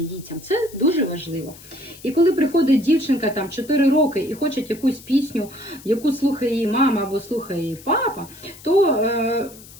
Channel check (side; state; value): left; noise; hiss, 20 dB below the sound